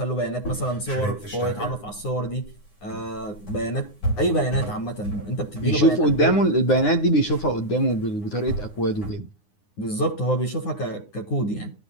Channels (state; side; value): late; right; 9.7 ms